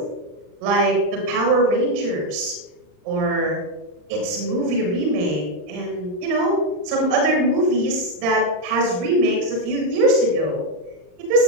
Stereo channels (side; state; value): left; late; 39 ms